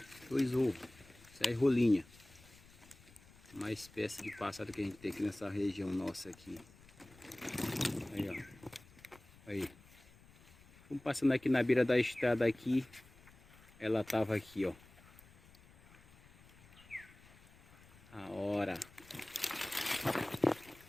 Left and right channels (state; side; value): noise; left; rumble, 24 dB below the sound